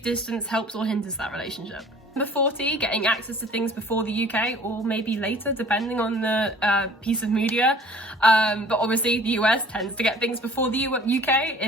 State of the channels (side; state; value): both; normal; correlation 0.50